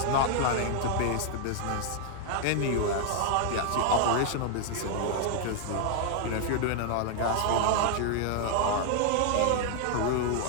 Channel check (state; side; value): different; both; correlation 0.00